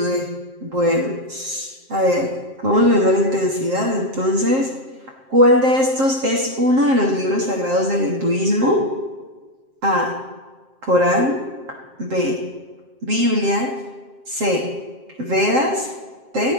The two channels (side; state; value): left; late; 7.6 ms